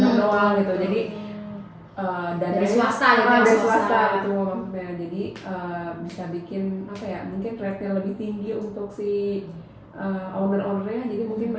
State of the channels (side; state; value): both; identical; correlation 1.00